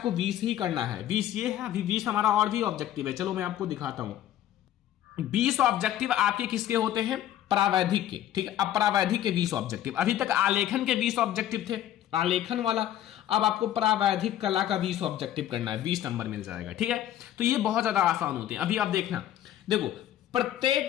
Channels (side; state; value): right; quieter; 12.0 dB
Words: 20 ही करना है। 20 ये है, अभी 20 हमारा और भी ऑब्जेक्टिव है। चलो मैं आपको दिखाता हूं। 20 ऑब्जेक्टिव आपके किसके होते हैं? प्रावैधिक के। ठीक है, अब प्रावैधिक के 20 ऑब्जेक्टिव। अभी तक आलेखन के 20 ऑब्जेक्टिव थे। आलेखन वाला। अब आपको प्रावैधिक कला का 20 ऑब्जेक्टिव करना है, 20 नंबर मिल जाएगा, ठीक है। तो ये बहुत ज्यादा आसान होते हैं। अभी आप देखना, देखो